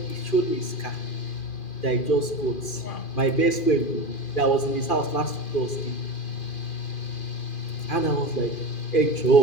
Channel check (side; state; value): right; late; 2.4 ms